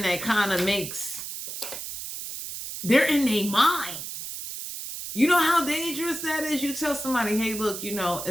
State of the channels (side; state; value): right; noise; hiss, 8 dB below the sound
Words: that kind of they're in their mind. You know how dangerous that is? You tell somebody, hey, look,